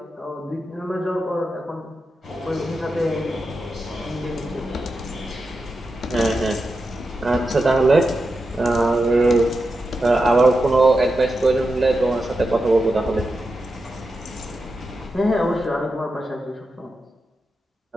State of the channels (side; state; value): both; normal; correlation 0.89